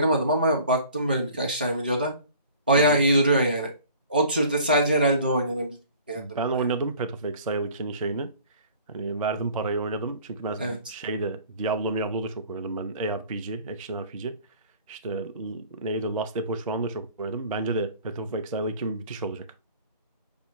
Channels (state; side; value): inverted; both; correlation -0.49